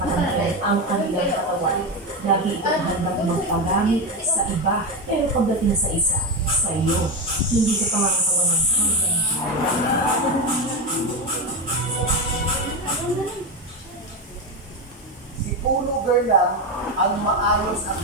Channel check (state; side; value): normal; both; correlation 0.14